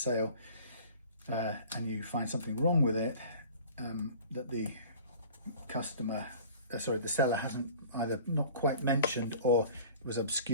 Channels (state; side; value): inverted; both; correlation -0.45